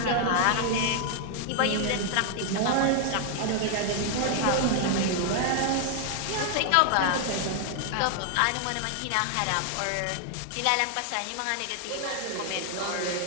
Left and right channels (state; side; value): different; both; correlation 0.00